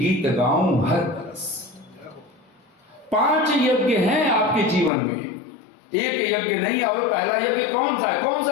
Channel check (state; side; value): drops out; right; at 4.9 s